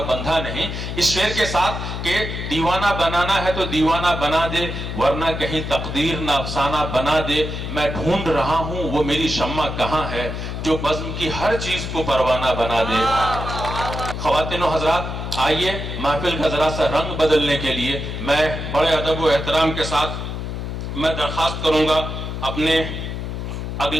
बंधा नहीं, इस शेर के साथ कि दीवाना बनाना है तो दीवाना बना दे, वरना कहीं तकदीर ना अफसाना बना दे। मैं ढूंढ रहा हूं वो मेरी शम्मा कहां है, जो बज़्म की हर चीज को परवाना बना दे। ख्वातीन व हज़रात, आइए महफिल का जरा सा रंग बदलने के लिए मैं बड़े अदब व एहतराम के साथ मैं दरख्वास्त करूंगा अपने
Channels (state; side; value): noise; left; hum, 5 dB below the sound